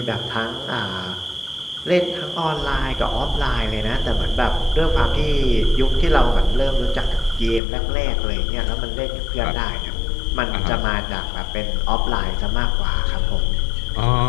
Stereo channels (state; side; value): drops out; right; at 7.6 s